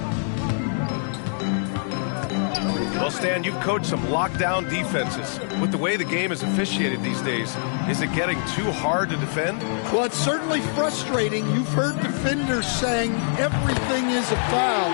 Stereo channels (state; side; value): silent; right; digital silence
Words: Well, Stan, you've coached some lockdown defenses. With the way the game is officiated these days, is it getting too hard to defend? Well, it's certainly frustrating. You've heard defenders saying everything is a foul.